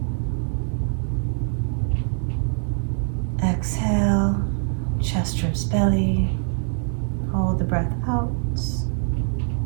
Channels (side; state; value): left; silent; digital silence